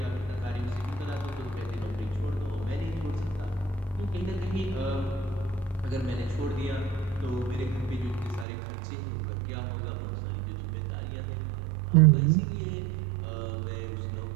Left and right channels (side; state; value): left; drops out; at 8.5 s